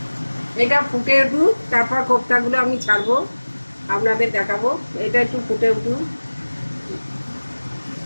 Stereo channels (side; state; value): both; inverted; correlation -1.00